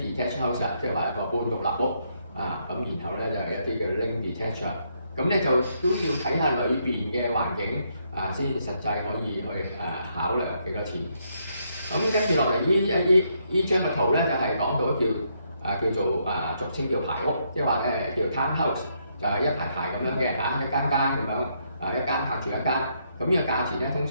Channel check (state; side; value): inverted; both; correlation -0.75